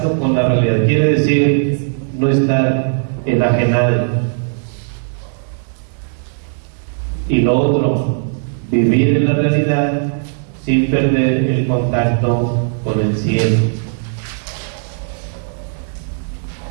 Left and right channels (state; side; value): silent; left; 68 dB below the other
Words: con la realidad. Quiere decir no estar enajenado. Y lo otro, vivir en la realidad sin perder el contacto con el cielo.